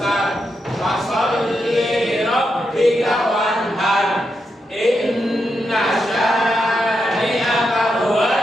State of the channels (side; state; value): both; normal; correlation 0.84